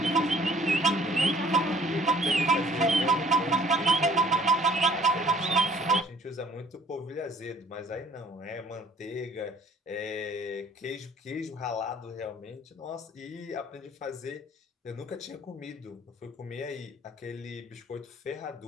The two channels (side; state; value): both; normal; correlation 0.55